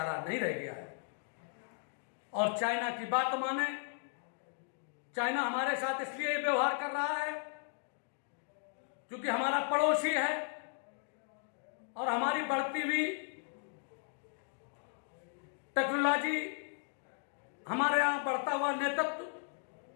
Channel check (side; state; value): right; silent; 54 dB below the other